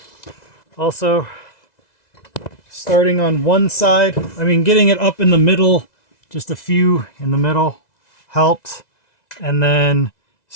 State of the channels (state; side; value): late; right; 2.0 ms